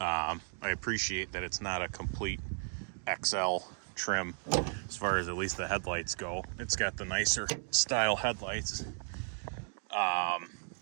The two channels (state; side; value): silent; left; 55 dB below the other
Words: appreciate that it's not a complete XL trim as far as at least the headlights go. It's got the nicer style headlights.